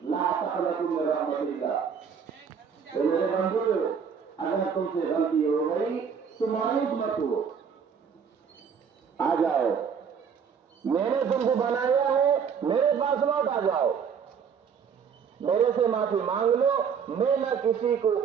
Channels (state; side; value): quieter; left; 6.8 dB